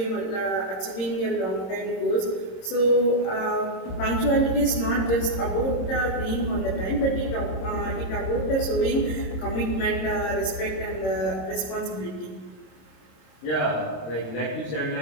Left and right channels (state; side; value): late; right; 27 ms